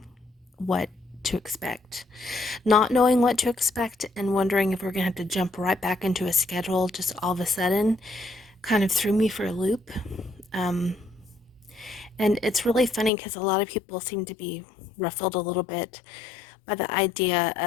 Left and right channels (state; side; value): drops out; right; at 13.1 s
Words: what to expect. Not knowing what to expect and wondering if we're going to have to jump right back into a schedule just all of a sudden kind of threw me for a loop. And it's really funny because a lot of people seem to be ruffled a little bit by the idea